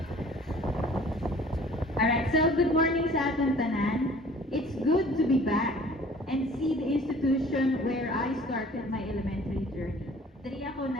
Alright, so good morning sa atong tanan. It's good to be back and see the institution where I started my elementary journey. Diri ako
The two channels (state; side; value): normal; both; correlation 0.50